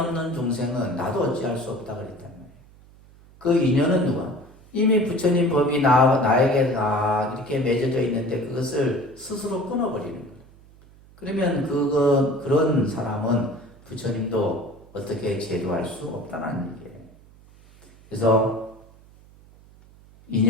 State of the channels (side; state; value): right; noise; hum, 25 dB below the sound